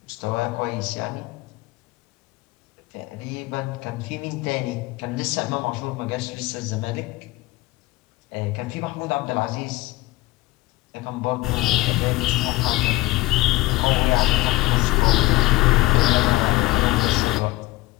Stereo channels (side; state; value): right; quieter; 19.5 dB